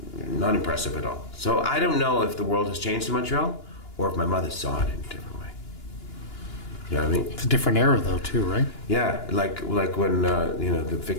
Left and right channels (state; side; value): late; right; 2.9 ms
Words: not impressive at all. So I don't know if the world has changed in Montreal or if my mother saw it in a different way. You know what I mean? It's a different era, though, too, right? Yeah, like when you know, the